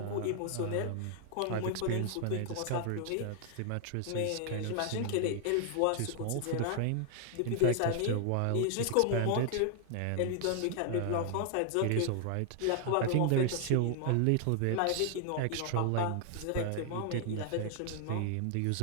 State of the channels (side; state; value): both; different; correlation 0.00